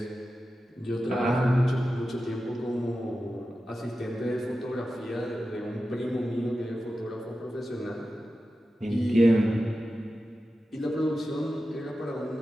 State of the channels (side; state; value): both; normal; correlation 0.92